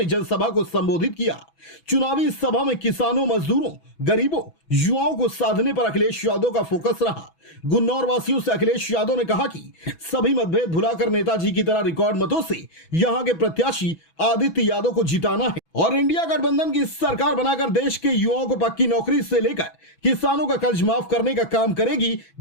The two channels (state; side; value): late; right; 6.1 ms